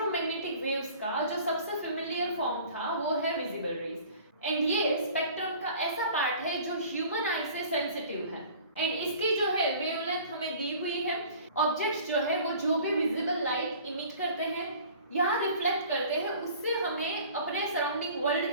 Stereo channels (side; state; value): both; inverted; correlation -0.47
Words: waves का जो सबसे फेमिलियर फॉर्म था वो है विजिबल रेज एंड ये स्पेक्ट्रम का ऐसा पार्ट है जो ह्यूमन आई से सेंसिटिव है एंड इसकी जो है वेवलेंथ हमें दी हुई है। ऑब्जेक्ट्स जो है वो जो भी विजिबल लाइट इमिट करते हैं या रिफ्लेक्ट करते हैं उससे हमें अपने सराउंडिंग वर्ल्ड